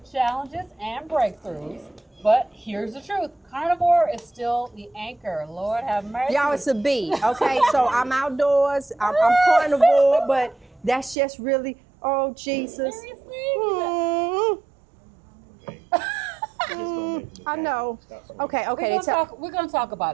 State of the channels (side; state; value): left; drops out; at 11.2 s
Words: challenges, and breakthroughs. But here's the truth. Carnivore is still the anchor. Lord have mercy. Y'all, it's a B, okay? So I'm outdoors, I'm carnivore, but that's just really, oh, Jesus. Seriously? I know. Okay. We're going to talk